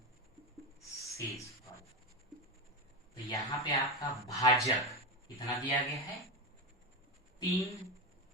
शेषफल। तो यहाँ पे आपका भाजक कितना दिया गया है,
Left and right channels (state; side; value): normal; both; correlation 0.15